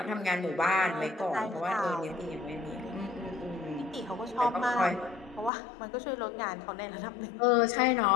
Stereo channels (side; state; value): right; drops out; at 5.5 s